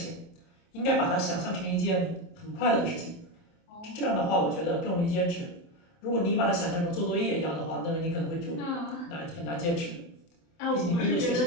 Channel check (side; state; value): right; late; 28 ms